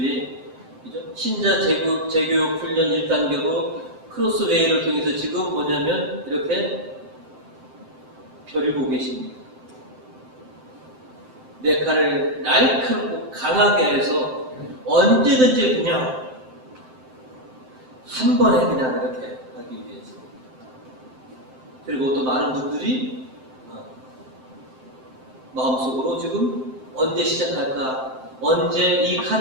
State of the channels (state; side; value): late; left; 7.7 ms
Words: 그죠? 신자 재교육 훈련 1단계로 크로스웨이를 통해서 지금 뭐냐면 이렇게 벼리고 계십니다. 내 칼을 날카롭고 강하게 해서 언제든지 그냥 한 번에 그냥 이렇게 하기 위해서. 그리고 또 많은 분들이 마음속으로 지금 언제 시작할까, 언제 이